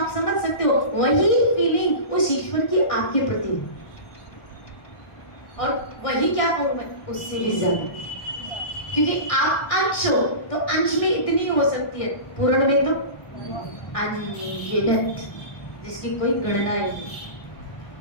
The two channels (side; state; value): right; late; 1.6 ms